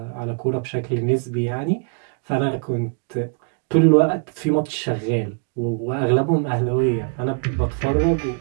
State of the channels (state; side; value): quieter; left; 36.6 dB